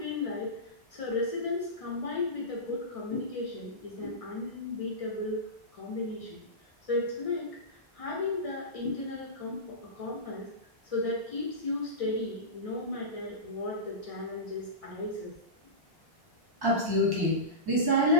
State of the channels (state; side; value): normal; both; correlation -0.19